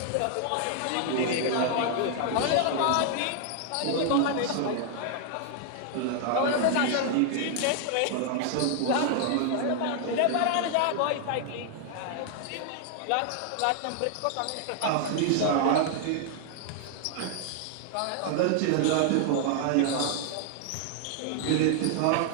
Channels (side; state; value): both; different; correlation 0.00